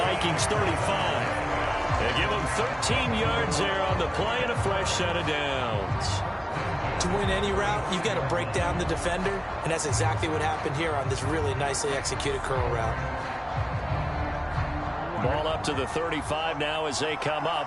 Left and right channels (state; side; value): identical; both; correlation 1.00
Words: 35. They give them 13 yards there on the play and a fresh set of downs. To win any route, you've got to break down the defender, and that's exactly what happened here on this really nicely executed curl route. Ball up to the 35 now as they come